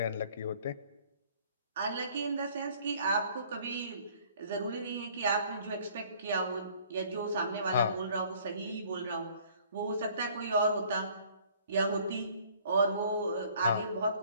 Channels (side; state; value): both; inverted; correlation -0.56